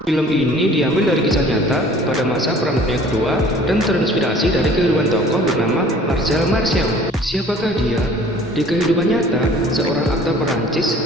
Film ini diambil dari kisah nyata pada masa Perang Dunia Kedua dan terinspirasi dari kehidupan tokoh bernama Marcel Marceau. Siapakah dia? Di kehidupan nyata, seorang aktor Perancis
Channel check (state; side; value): normal; both; correlation 0.50